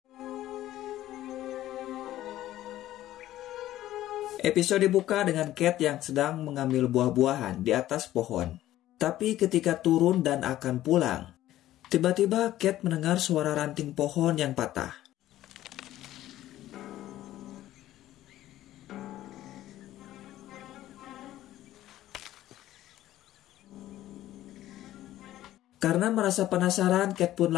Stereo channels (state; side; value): quieter; right; 14.0 dB